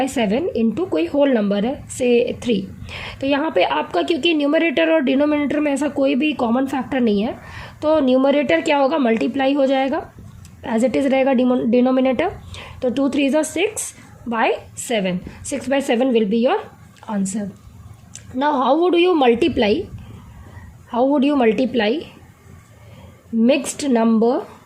इंटू कोई होल नंबर है से 3। तो यहाँ पे आपका क्योंकि न्यूमरेटर और डिनोमिनेटर में ऐसा कोई भी कॉमन फैक्टर नहीं है, तो न्यूमरेटर क्या होगा, मल्टीप्लाई हो जाएगा, एज इट इज़ रहेगा डिनोमिनेटर। तो 2 3 ज़ा 6/7, 6/7 will be your answer. Now how would you multiply mixed number,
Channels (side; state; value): both; identical; correlation 1.00